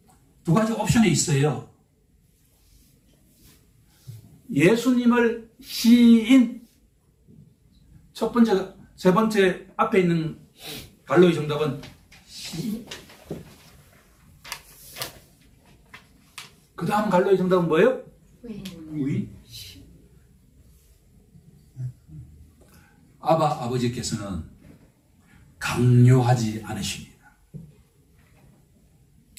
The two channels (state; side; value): identical; both; correlation 1.00